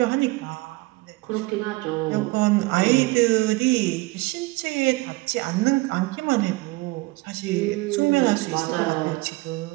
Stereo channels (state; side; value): quieter; left; 22.3 dB